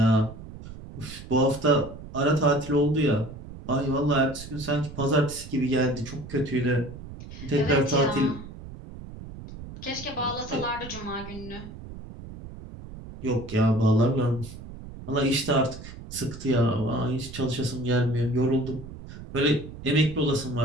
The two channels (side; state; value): right; noise; rumble, 13 dB below the sound